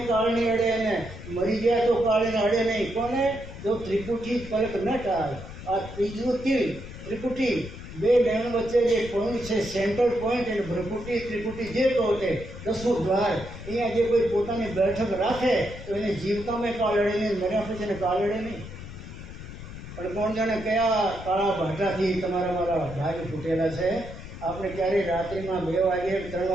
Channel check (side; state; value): left; noise; rumble, 12 dB below the sound